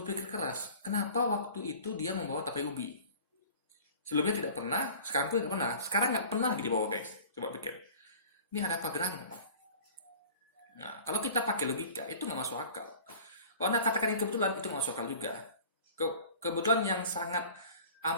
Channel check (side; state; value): both; inverted; correlation -0.44